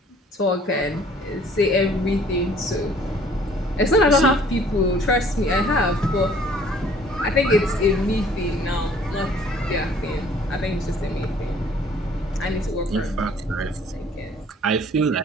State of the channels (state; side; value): normal; both; correlation 0.56